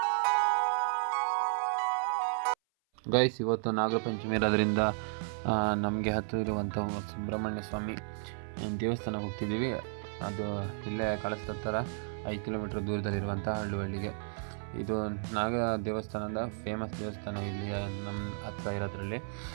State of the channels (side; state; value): left; silent; 56 dB below the other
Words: Guys, ಇವತ್ತು ನಾಗರ ಪಂಚಮಿ ಇರೋದ್ರಿಂದ ನಮಗೆ ಹತ್ತಿರ ಇರುವಂಥ ಸುಬ್ರಹ್ಮಣ್ಯ ಸ್ವಾಮಿ ದೇವಸ್ಥಾನಕ್ಕೆ ಹೋಗ್ತಿದ್ದೀವಿ. ಅದು ಇಲ್ಲೇ ಕಳಿಸ್ದ ಥರ 5 ಕಿಲೋಮೀಟ್ರ್ ದೂರದಲ್ಲಿರುವಂಥ ಹಳ್ಳಿಗೆ. ಇದು ನಾಗ ದೇವಸ್ಥಾನದ ಫೇಮಸ್ ದೇವಸ್ಥಾನ ಇಲ್ಲಿ ನಮ್ಮ ಹತ್ರ ಇರೋದ್ರಲ್ಲಿ.